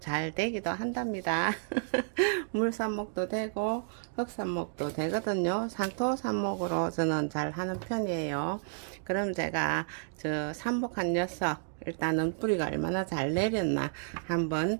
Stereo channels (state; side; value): silent; left; digital silence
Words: 되기도 한답니다. 물삽목도 되고 흙삽목도 되거든요. 상토 삽목으로 저는 잘 하는 편이에요. 그럼 제가 저 삽목한 녀석 일단은 뿌리가 얼마나 잘 내렸나 한번